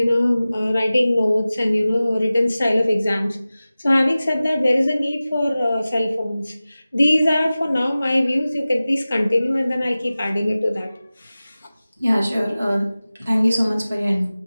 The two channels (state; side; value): inverted; both; correlation -0.97